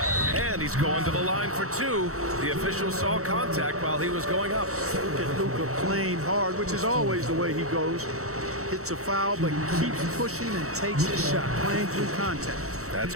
And he's going to the line for two. The official saw contact while he was going up. Look at Luka playing hard, which is always the way he goes. Hits a foul, but keeps pushing and takes his shot, playing through contact. That's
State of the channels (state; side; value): late; left; 0.64 ms